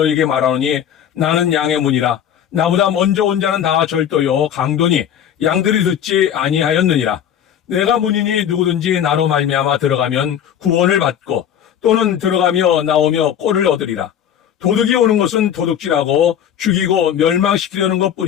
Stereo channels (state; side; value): quieter; right; 9.5 dB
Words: 말하노니 나는 양의 문이라. 나보다 먼저 온 자는 다 절도요 강도니 양들이 듣지 아니하였느니라. 내가 문이니 누구든지 나로 말미암아 들어가면 구원을 받고 또는 들어가며 나오며 꼴을 얻으리라. 도둑이 오는 것은 도둑질하고 죽이고 멸망시키려는